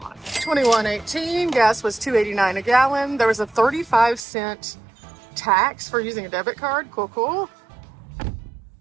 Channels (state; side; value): drops out; left; at 4.2 s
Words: 21.18, gas was $2.89 a gallon. There was a 35-cent tax for using a debit card. Cool.